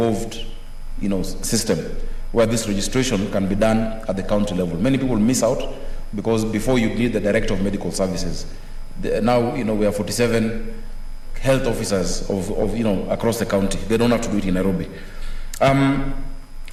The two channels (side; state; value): both; identical; correlation 1.00